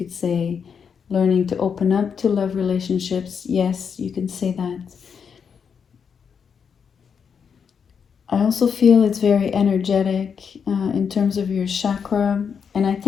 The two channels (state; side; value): quieter; right; 6.7 dB